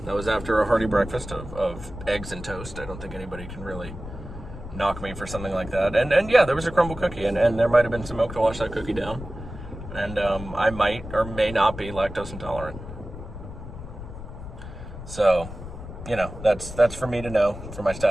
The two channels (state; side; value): noise; left; rumble, 11 dB below the sound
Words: after a hearty breakfast of eggs and toast. I don't think anybody can really knock me for something like that. And yeah, there was a crumble cookie, and there might have been some milk to wash that cookie down. And I might or may not be lactose intolerant. So, you know, that's for me to know, for my